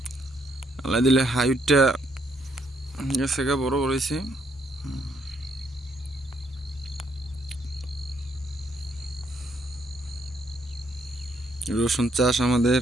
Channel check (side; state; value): both; normal; correlation 0.72